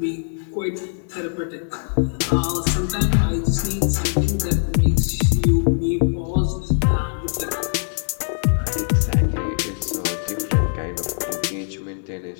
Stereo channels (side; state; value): right; silent; 64 dB below the other